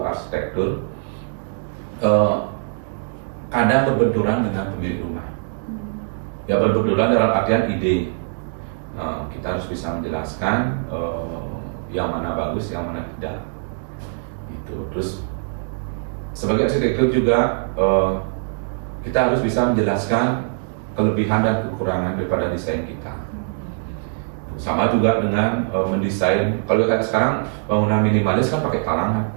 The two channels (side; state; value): left; silent; digital silence